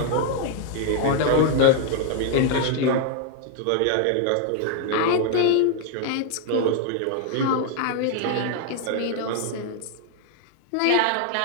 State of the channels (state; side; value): different; both; correlation 0.00